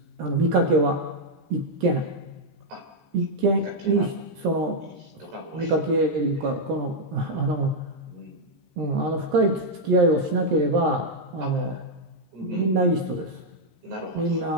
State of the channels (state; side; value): late; left; 13 ms